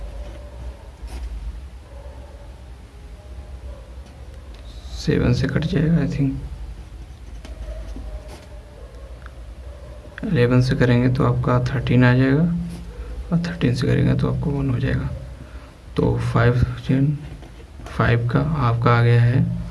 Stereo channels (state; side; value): identical; both; correlation 1.00